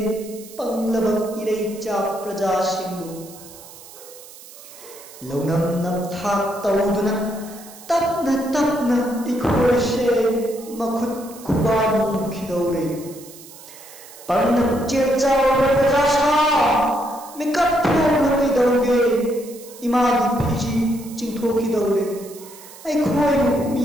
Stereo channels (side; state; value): right; noise; hiss, 18 dB below the sound